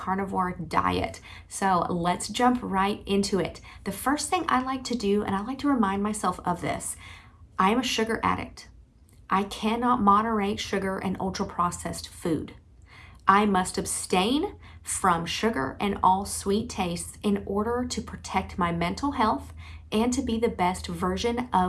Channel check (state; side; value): identical; both; correlation 1.00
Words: diet. So let's jump right into it. The first thing I like to do, and I like to remind myself of this, I am a sugar addict. I cannot moderate sugar and ultra processed food. I must abstain from sugar and all sweet tastes in order to protect my mental health and to be the best version